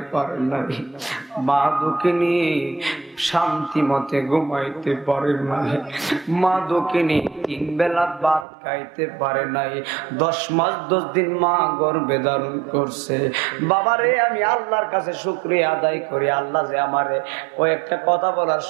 পারে নাই, মা দুঃখিনী শান্তি মতে ঘুমাইতে পারে নাই, মা দুঃখিনী 3 বেলা ভাত খাইতে পারে নাই। 10 মাস 10 দিন মা গর্ভে ধারণ করছে। বাবারে, আমি আল্লাহর কাছে শুকরিয়া আদায় করি, আল্লাহ যে আমারে কয়েকটা কথা বলার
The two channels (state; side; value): drops out; left; at 8.5 s